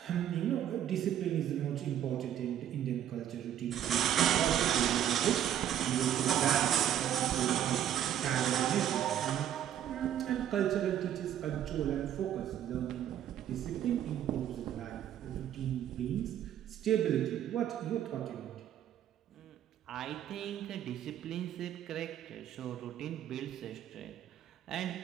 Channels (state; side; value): quieter; left; 10.6 dB